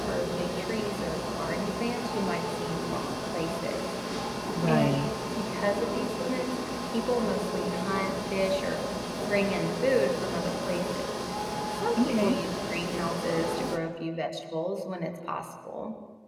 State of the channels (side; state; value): both; identical; correlation 1.00